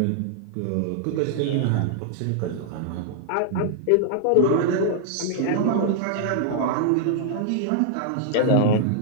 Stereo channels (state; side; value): different; both; correlation -0.01